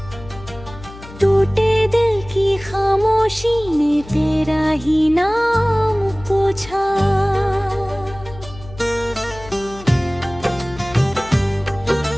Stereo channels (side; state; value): left; noise; hum, 17 dB below the sound